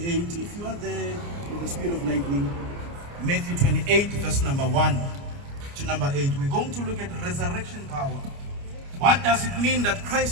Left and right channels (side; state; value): left; late; 29 ms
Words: if you are there with the speed of lightning, Matthew 28, verse number 1 to number 8. We're going to look at resurrection power. What does it mean that